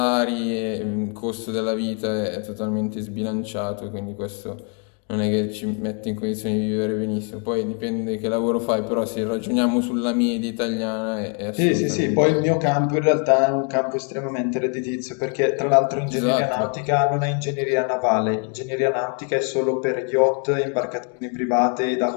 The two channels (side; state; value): right; quieter; 38.8 dB